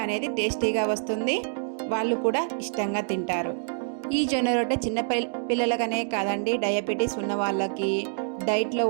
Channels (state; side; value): silent; left; digital silence